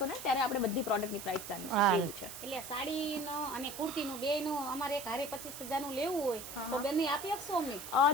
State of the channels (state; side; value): noise; right; hiss, 11 dB below the sound